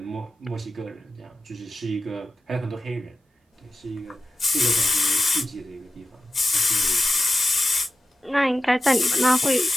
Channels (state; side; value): normal; both; correlation 0.91